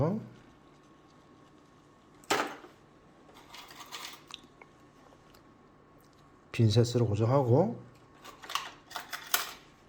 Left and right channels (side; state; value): both; identical; correlation 1.00